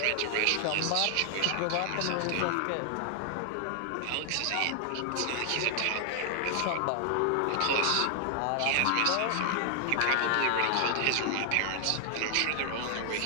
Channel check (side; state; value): both; different; correlation 0.00